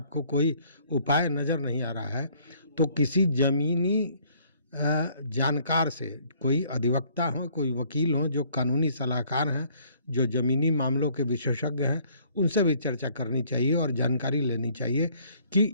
कोई उपाय नज़र नहीं आ रहा है, तो किसी ज़मीनी जानकार से, कोई अधिवक्ता हो, कोई वकील हो, जो कानूनी सलाहकार हैं, जो ज़मीनी मामलों के विशेषज्ञ हैं, उनसे भी चर्चा करनी चाहिए और जानकारी लेनी चाहिए कि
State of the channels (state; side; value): inverted; both; correlation -0.62